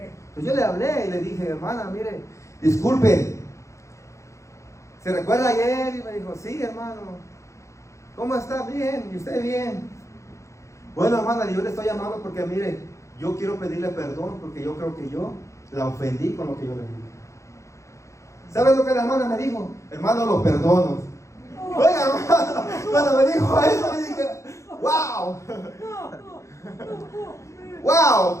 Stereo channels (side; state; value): right; late; 0.15 ms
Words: Entonces yo le hablé y le dije, hermana, mire, disculpe, ¿se recuerda ayer? Y me dijo, sí, hermano. ¿Cómo está? Bien. ¿Y usted bien? Bueno, hermana, yo le estoy llamando porque, mire, yo quiero pedirle perdón porque yo creo que yo la ofendí con lo que yo le dije. ¿Sabes lo que la hermana me dijo? Hermano, lo perdono. Oiga, hermano, cuando me dijo eso, me dije, wow. Wow,